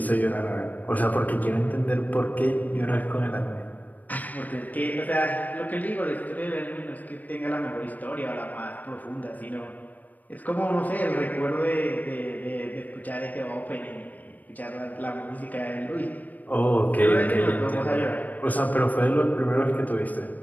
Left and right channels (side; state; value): right; late; 0.080 ms